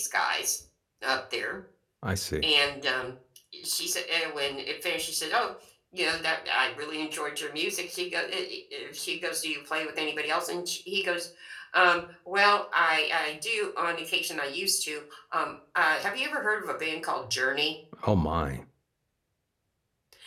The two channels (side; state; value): both; identical; correlation 1.00